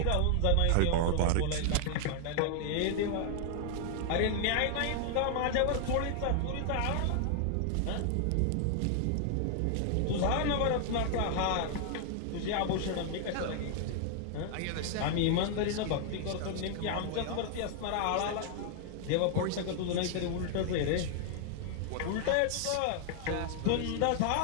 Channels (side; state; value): both; different; correlation 0.00